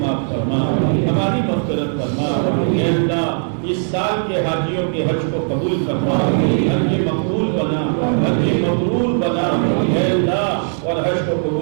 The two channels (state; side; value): silent; left; 67 dB below the other